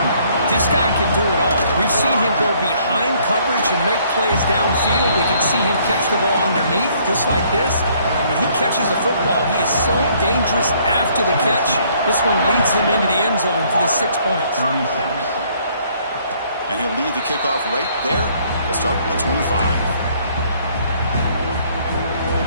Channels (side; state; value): both; inverted; correlation -0.63